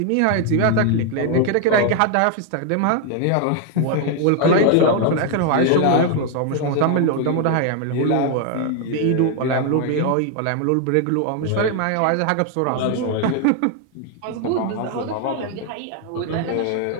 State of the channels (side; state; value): both; different; correlation 0.00